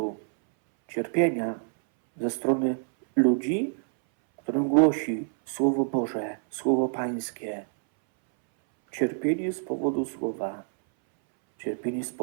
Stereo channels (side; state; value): left; silent; 60 dB below the other